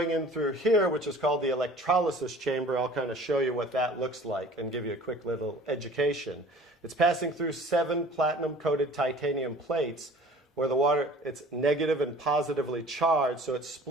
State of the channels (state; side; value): normal; both; correlation 0.47